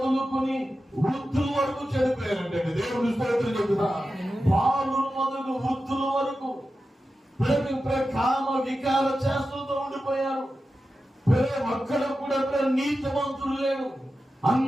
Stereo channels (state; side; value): normal; both; correlation 0.92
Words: వృద్ధుల వరకు చనిపోయారంటే. దేవుని స్తోత్రం చెప్తున్నా. బాలురు మొదలు వృద్ధుల వరకు కామ వికార చేష్టలతో ఉండిపోయారు. ఒక్కడ కూడా నీతిమంతులు లేడు.